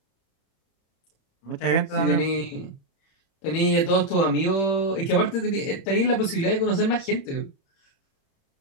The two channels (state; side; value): late; right; 31 ms